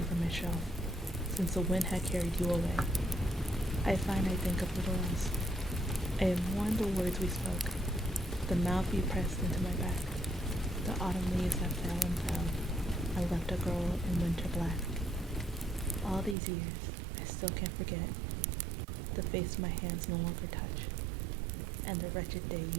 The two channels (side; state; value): left; drops out; at 16.4 s